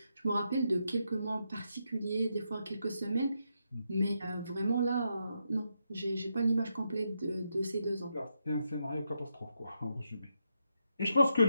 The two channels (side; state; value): both; inverted; correlation -0.82